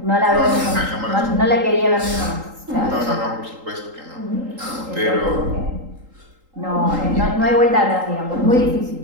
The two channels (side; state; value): left; late; 3.8 ms